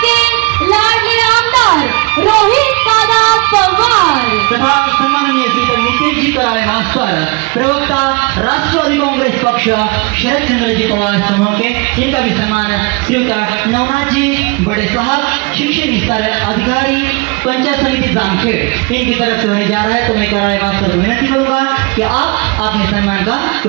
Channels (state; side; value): quieter; left; 28.4 dB